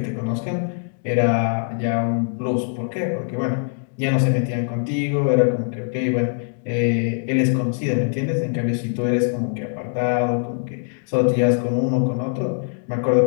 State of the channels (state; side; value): silent; right; 64 dB below the other